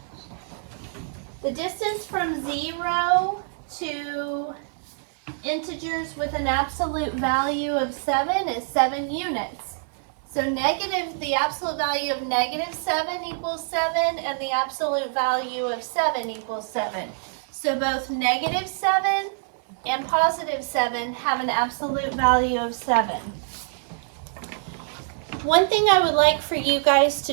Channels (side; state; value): left; silent; digital silence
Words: The distance from 0 to integers with an absolute value of 7 is 7 units. So the absolute value of -7 equals 7, and the absolute value of 7 equals 7. So both -7 and +7 have an absolute value of 7. One thing I would like for you guys to